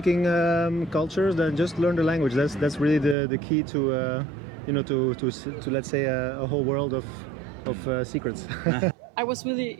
cultures, then just learn the language. That's really the key to to let's say a whole world of secrets. I was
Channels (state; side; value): drops out; left; at 3.2 s